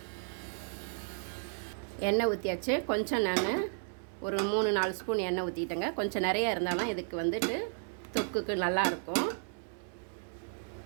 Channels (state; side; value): silent; left; 55 dB below the other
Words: எண்ணெய் ஊற்றியாச்சு. கொஞ்சம் நான் ஒரு 3-4 ஸ்பூன் எண்ணெய் ஊற்றிட்டேங்க. கொஞ்சம் நிறைய இருந்தாலும் இதுக்கு வந்துட்டு தொக்குக்கு நல்லாயிருக்கும்.